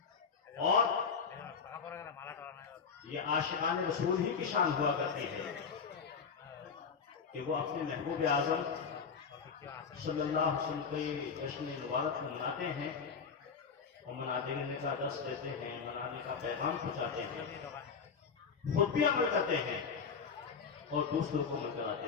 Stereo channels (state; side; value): quieter; right; 5.9 dB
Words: اور یہ عاشقان رسول ہی کی شان ہوا کرتی ہے کہ وہ اپنے محبوب اعظم صلی اللہ علیہ وسلم کی جشن مبارک کو مناتے ہیں اور منانے کا درس دیتے ہیں، منانے کا پیغام پہنچاتے ہیں، خود بھی عمل کرتے ہیں اور دوسروں کو عمل کراتے